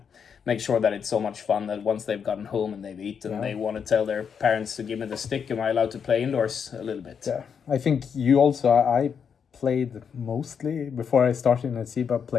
make sure that it's so much fun that once they've gotten home and they've eaten, they want to tell their parents to give me the stick. Am I allowed to play indoors a little bit? Yeah, I think you also. I played mostly before I started in SIBA.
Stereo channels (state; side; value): quieter; right; 7.0 dB